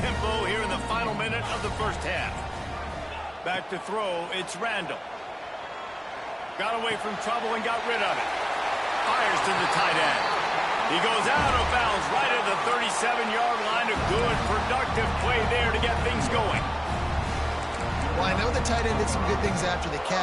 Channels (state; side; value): identical; both; correlation 1.00